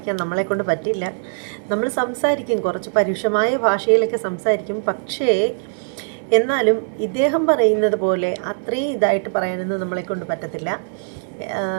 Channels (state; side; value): silent; left; 64 dB below the other